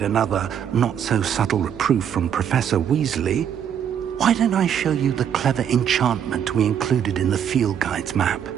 another not-so-subtle reproof from Professor Weasley, why don't I show you the clever enchantment we included in the field guide's map?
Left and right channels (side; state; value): left; quieter; 8.8 dB